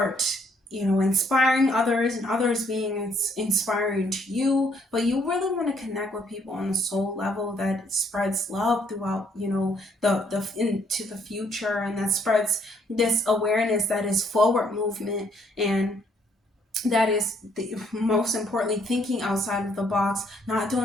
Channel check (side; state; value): both; normal; correlation 0.68